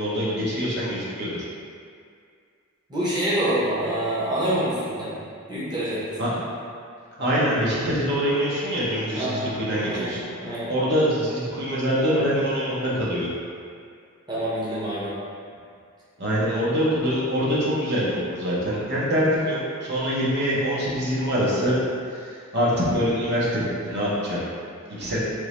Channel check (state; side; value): normal; both; correlation 0.30